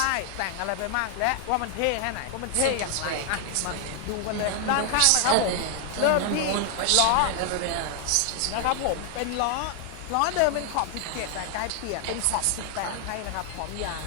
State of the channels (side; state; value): both; different; correlation 0.00